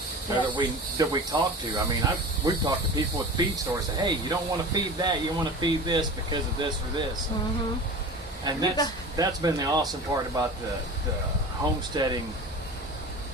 Yes. that we talk to. I mean, we've talked to people with feed stores. Say, hey, you don't want to feed that. You want to feed this because of this or this. Mm-hmm. And that's been the awesome part about the homesteading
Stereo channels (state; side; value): normal; both; correlation 0.35